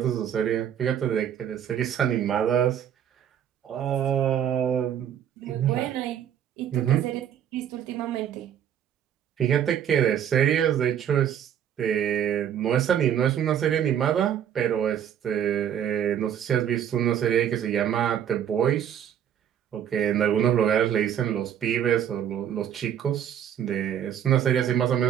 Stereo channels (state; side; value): quieter; left; 9.5 dB